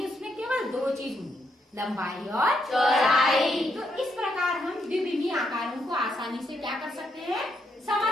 उसमें केवल 2 चीज होंगी, लंबाई और चौड़ाई। तो इस प्रकार हम द्विविमीय आकारों को आसानी से क्या कर सकते हैं?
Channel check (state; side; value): normal; both; correlation 0.78